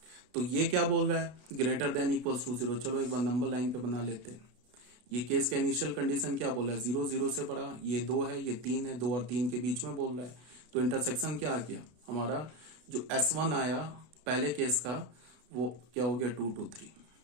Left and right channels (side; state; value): left; late; 32 ms